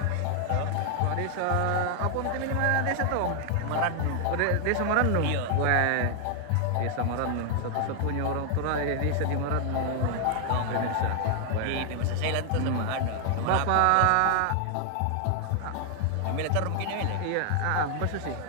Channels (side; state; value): both; different; correlation 0.00